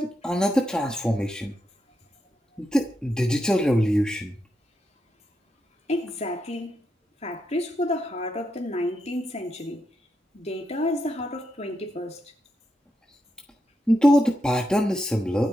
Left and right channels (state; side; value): normal; both; correlation 0.84